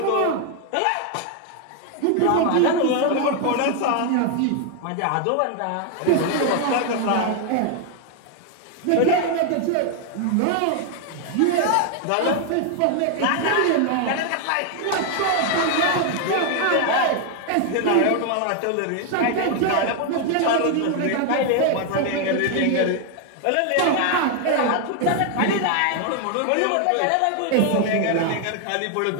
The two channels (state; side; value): different; both; correlation 0.00